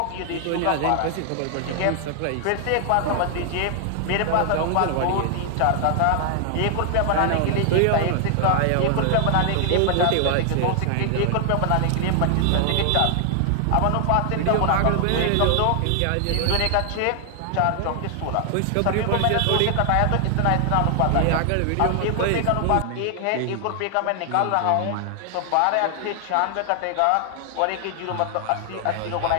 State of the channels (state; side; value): different; both; correlation 0.00